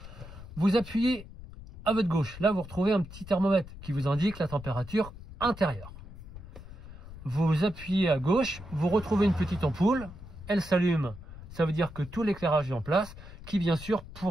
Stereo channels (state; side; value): noise; left; rumble, 15 dB below the sound